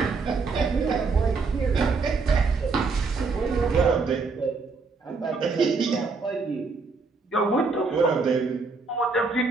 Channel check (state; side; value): quieter; left; 4.3 dB